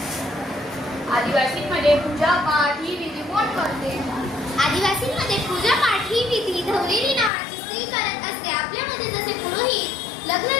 आदिवासींमध्ये पूजा पाठ ही विधी कोण करते? आदिवासींमध्ये पूजा पाठ ही विधी धवलेरी नावाची स्त्री करत असते. आपल्यामध्ये जसे पुरोहित लग्न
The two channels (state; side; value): drops out; right; at 7.3 s